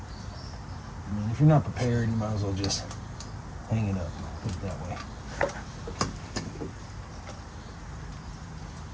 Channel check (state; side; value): identical; both; correlation 1.00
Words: mean, if you're not prepared, you might as well just hang it up, put it that way.